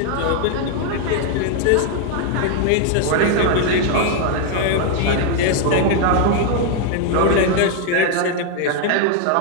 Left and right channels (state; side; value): different; both; correlation 0.00